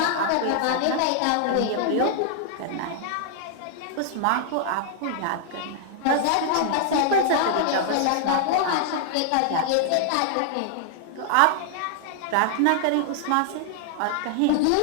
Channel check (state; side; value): different; both; correlation -0.01